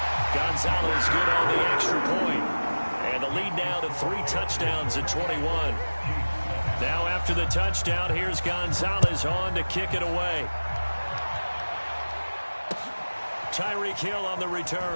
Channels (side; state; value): both; inverted; correlation -1.00